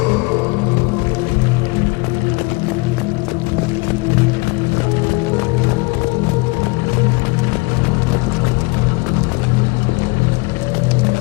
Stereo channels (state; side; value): quieter; right; 26.3 dB